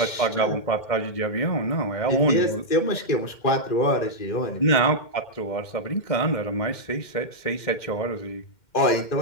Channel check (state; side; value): late; right; 2.1 ms